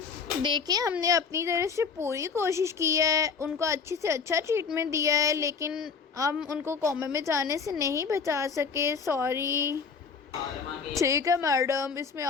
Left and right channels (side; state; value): right; quieter; 5.7 dB